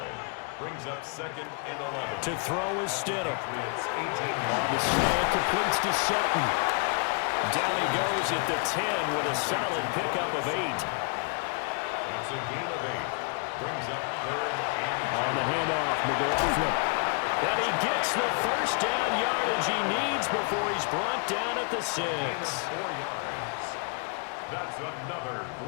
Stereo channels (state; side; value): quieter; right; 37.2 dB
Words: Brings up 2nd and 11. To throw is Stidham. Patriots 18 On the slant, completes to Sutton. Down he goes at the 10 with a solid pickup of 8. That's a gain of 8. Brings up 3rd and 2. On the handoff, McLaughlin. And he gets the first down yardage he needs before he's brought down at the 6. 4 yards. That's another